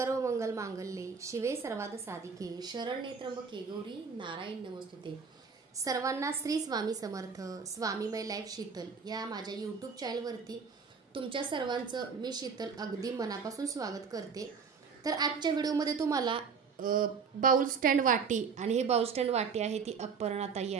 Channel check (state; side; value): quieter; left; 5.7 dB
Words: मंगल मांगल्ये शिवे सर्वाद साधिके शरण्ये त्र्यंबके गौरी नारायण नमस्तुते। सर्वांना श्री स्वामी समर्थ स्वामीमय लाईफ शीतल या माझ्या यूट्यूब चॅनलवरती तुमच्या सर्वांचं मी शीतल अगदी मनापासून स्वागत करते। तर आजच्या व्हिडिओमध्ये तुम्हाला बाउल स्टँड वाटी आणि हे बाउल स्टँड वाटी आहे ती अपर्णाताई